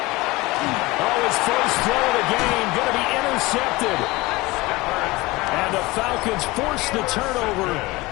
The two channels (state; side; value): quieter; right; 21.5 dB